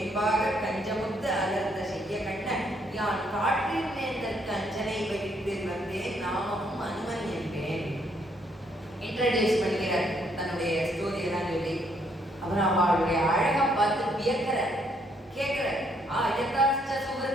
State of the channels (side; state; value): both; normal; correlation 0.70